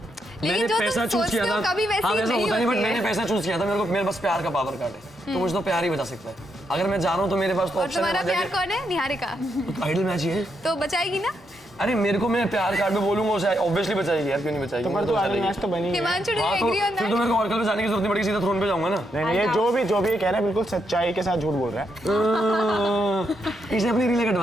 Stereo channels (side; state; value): both; normal; correlation 0.80